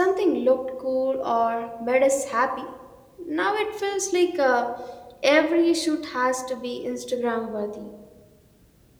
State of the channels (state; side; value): identical; both; correlation 1.00